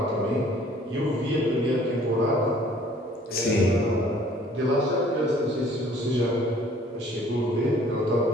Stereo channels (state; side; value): normal; both; correlation 0.56